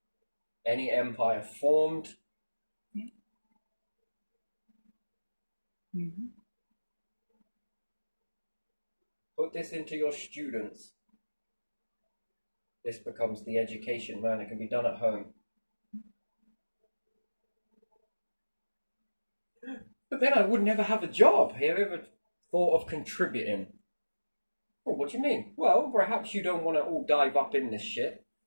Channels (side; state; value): both; inverted; correlation -1.00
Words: any empire formed. Put this into your students. This becomes the education, man. It can be done at home. But then I would never have a job. Have you ever thought of contributing? Well, what do you mean? Well, perhaps you don't want to all dive up in this shit.